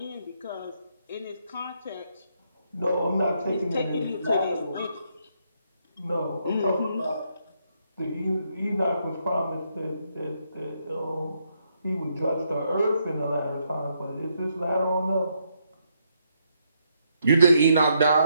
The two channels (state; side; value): inverted; both; correlation -0.76